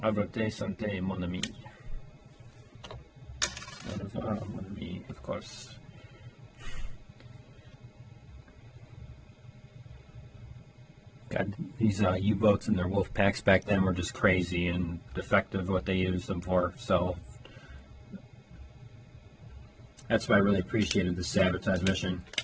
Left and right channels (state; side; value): identical; both; correlation 1.00